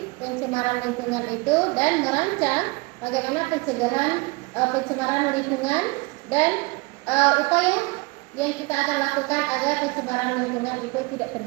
pencemaran lingkungan itu, dan merancang bagaimana pencegahan pencemaran lingkungan dan upaya yang kita akan lakukan agar pencemaran lingkungan itu tidak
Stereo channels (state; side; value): quieter; left; 26.2 dB